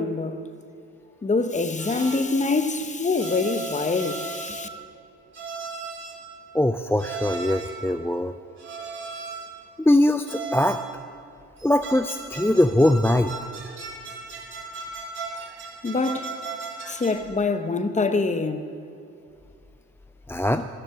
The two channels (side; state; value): both; normal; correlation 0.75